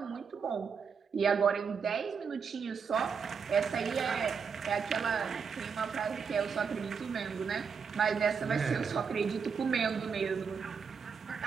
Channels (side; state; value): left; quieter; 6.1 dB